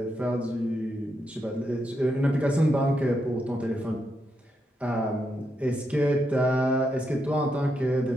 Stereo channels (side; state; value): both; normal; correlation 0.82